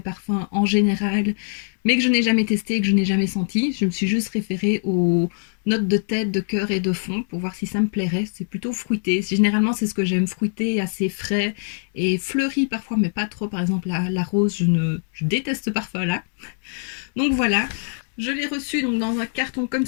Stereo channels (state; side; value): silent; right; digital silence